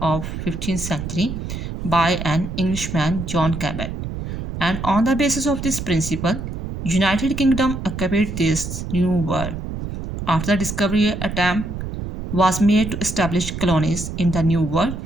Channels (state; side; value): noise; right; rumble, 6 dB below the sound